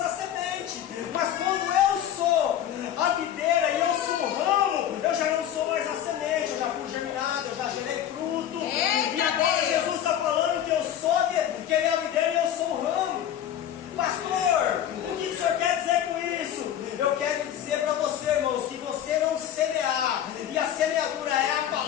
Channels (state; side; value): quieter; right; 10.6 dB